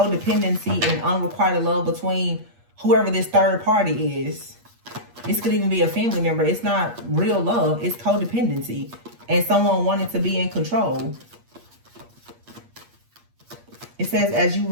and unrequited love between whoever this third party is. This could even be a family member. It's not real love. It's codependency. And someone wanting to be in control. It says, as you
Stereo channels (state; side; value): late; left; 8.4 ms